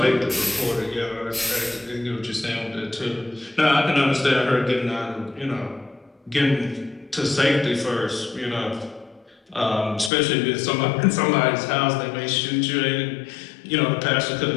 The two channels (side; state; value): right; drops out; at 10.1 s